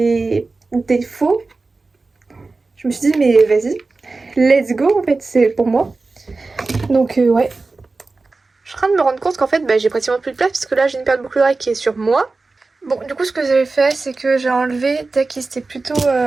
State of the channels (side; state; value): left; quieter; 3.7 dB